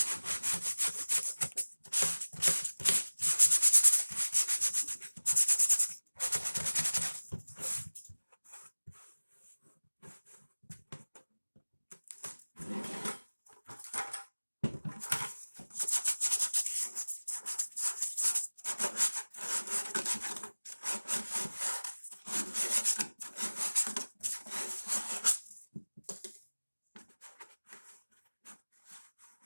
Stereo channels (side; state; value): both; inverted; correlation -1.00